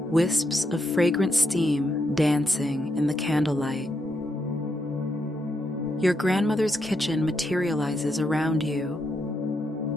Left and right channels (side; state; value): both; normal; correlation 0.81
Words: Wisps of fragrant steam dancing in the candlelight. Your grandmother's kitchen materializes around you.